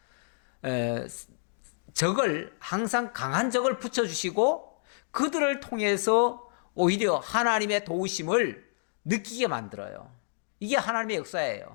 적을 항상 강한 적을 붙여주시고 그들을 통해서 오히려 하나님의 도우심을 느끼게 만들어요. 이게 하나님의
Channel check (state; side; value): silent; right; digital silence